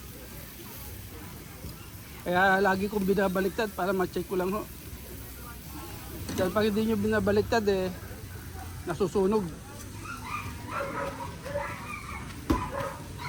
Kaya lagi kong binabaliktad para ma-check ko lang ho. Dahil pag hindi nyo binabaliktad nasusunog.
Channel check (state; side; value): identical; both; correlation 1.00